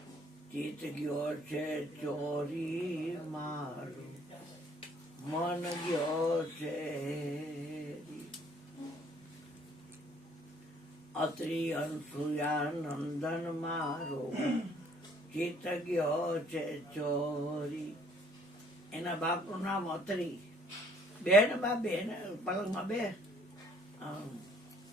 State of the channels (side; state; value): both; normal; correlation 0.61